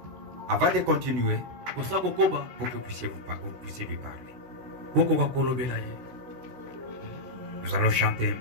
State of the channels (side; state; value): left; late; 16 ms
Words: Avant de continuer, pour que vous puissiez lui parler. Nous allons chanter un